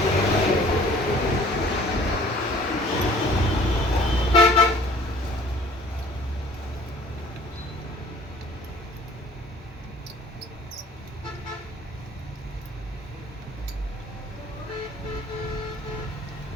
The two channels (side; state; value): both; normal; correlation 0.52